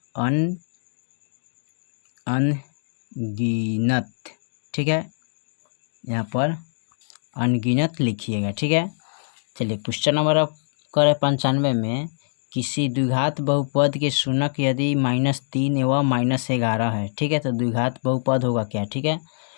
अनगिनत, ठीक है, यहाँ पर अनगिनत लिखिएगा, ठीक है। चलिए क्वेश्चन नंबर अब करें 95 में, किसी द्विघात बहुपद के शून्यक यदि -3 एवं -11 है, ठीक है। तो द्विघात बहुपद होगा क्या, ठीक है।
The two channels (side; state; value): right; silent; digital silence